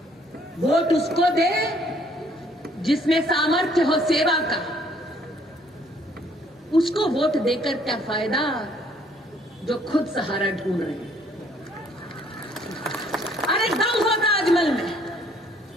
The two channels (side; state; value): both; normal; correlation 0.63